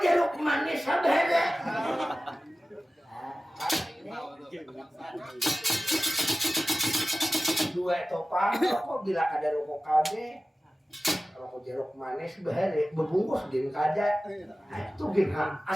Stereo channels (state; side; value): normal; both; correlation 0.96